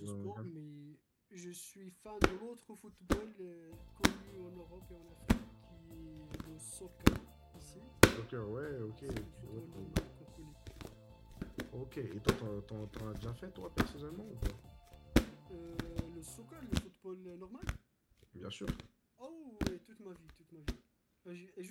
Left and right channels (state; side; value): identical; both; correlation 1.00